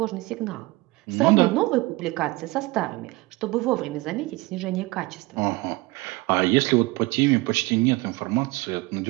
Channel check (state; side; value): quieter; left; 22.2 dB